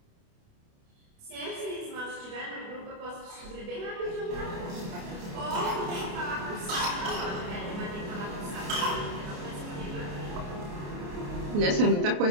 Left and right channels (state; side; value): late; left; 29 ms